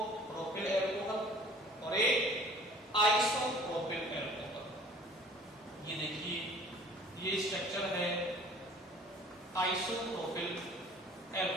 प्रोपिल एल्कोहल और एक आइसोप्रोपिल एल्कोहल। ये देखिए, ये स्ट्रक्चर है आइसोप्रोपिल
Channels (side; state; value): both; normal; correlation 0.50